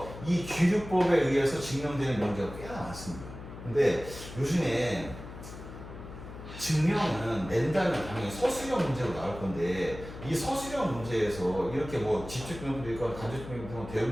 이 귀류법에 의해서 증명되는 명제가 꽤나 많습니다. 근데 요즘에 증명은 낸다면 당연히 서술형 문제로 나올 건데 이 서술형 문제에서 이렇게 뭐 집중력도 있건 간접증명도 있건 대응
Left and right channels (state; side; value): noise; left; hum, 13 dB below the sound